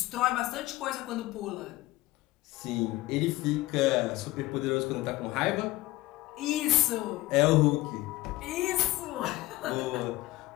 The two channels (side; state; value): right; quieter; 18.4 dB